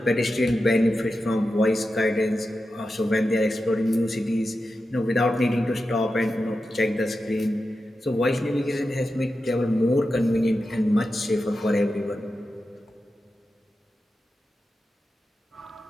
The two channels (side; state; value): both; normal; correlation 0.91